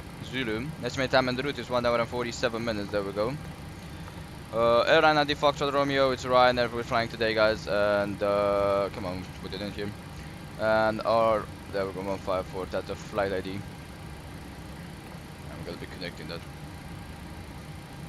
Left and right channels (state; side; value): identical; both; correlation 1.00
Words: Zulu. Estimated time on the route is 1 hour and 47 minutes. There we go. Airline ID Foxtrot Romeo, it's Ryanair, we're flying today, guys, and come on, put it in here. And there we go, 154, that's the flight ID. I'm gonna be connecting that.